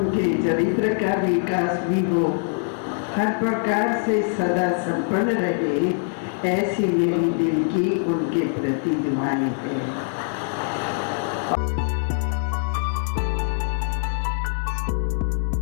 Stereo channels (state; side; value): silent; right; digital silence